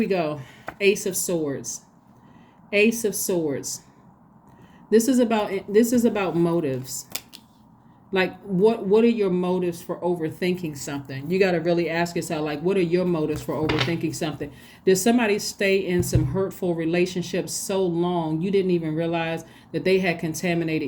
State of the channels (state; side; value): identical; both; correlation 1.00